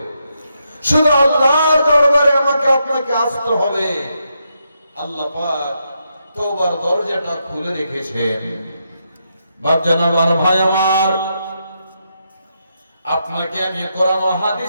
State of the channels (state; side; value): inverted; both; correlation -0.82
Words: শুধু আল্লাহর দরবারে আমাকে আপনাকে আসতে হবে। আল্লাহ পাক তওবার দরজাটা খুলে রেখেছেন। বাপজান আমার, ভাই আমার, আপনাকে আমি কোরআন ও